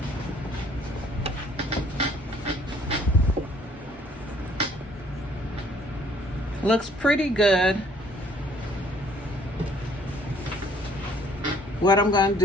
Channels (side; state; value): both; normal; correlation 0.60